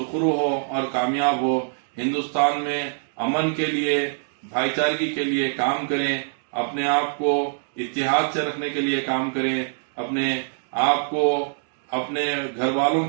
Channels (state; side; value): silent; left; digital silence